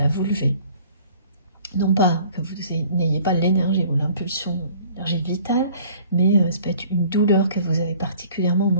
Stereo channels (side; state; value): both; inverted; correlation -0.53